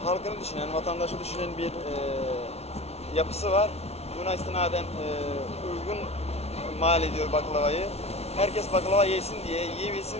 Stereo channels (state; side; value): late; right; 0.31 ms